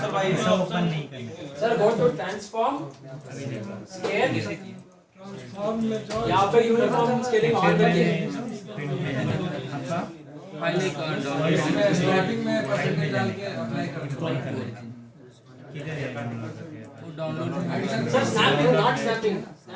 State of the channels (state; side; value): identical; both; correlation 1.00